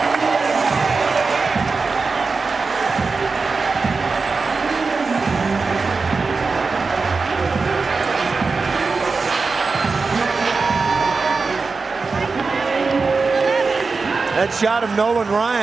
That shot of Nolan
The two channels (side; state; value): left; quieter; 4.3 dB